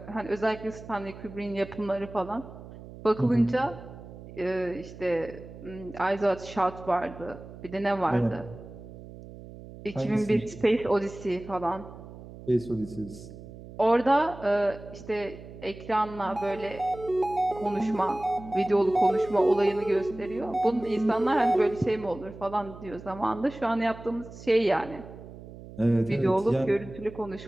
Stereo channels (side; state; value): right; noise; hum, 15 dB below the sound